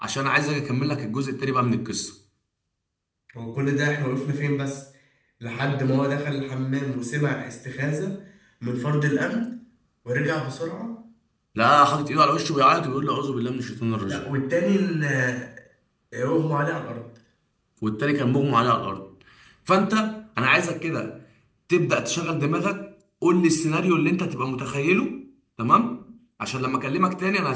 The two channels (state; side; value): identical; both; correlation 1.00